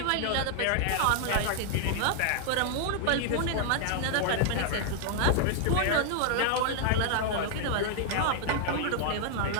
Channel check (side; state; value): both; different; correlation 0.00